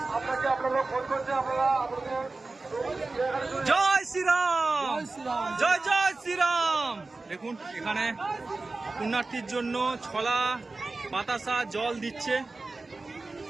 জয় শ্রীরাম, জয় জয় শ্রীরাম। দেখুন এখানে পুণ্যার্থীর জন্য ছলা, বাতাসা, জল দিচ্ছে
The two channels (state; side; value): quieter; left; 3.5 dB